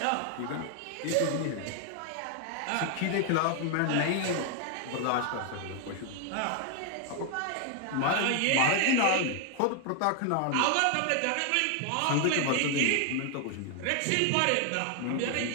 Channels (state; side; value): different; both; correlation 0.00